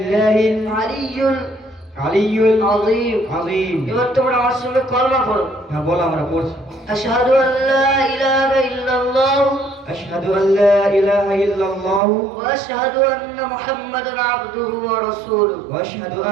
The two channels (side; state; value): left; drops out; at 12.0 s